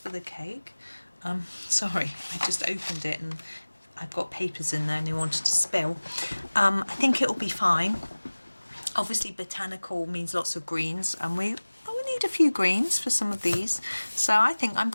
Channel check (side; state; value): both; inverted; correlation -1.00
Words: the cake. Sorry, I just opened it and I've got papers in there and they wanted to spill. I think it will be fine. Obviously Botanical means lots of greens, and we need a few greens for some of these, so I think I'm